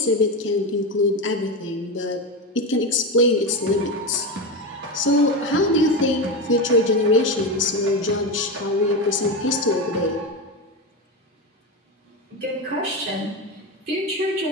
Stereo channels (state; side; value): normal; both; correlation 0.17